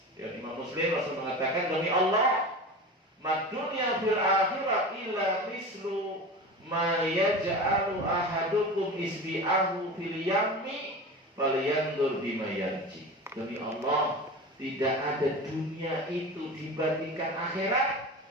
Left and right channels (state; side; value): normal; both; correlation 0.30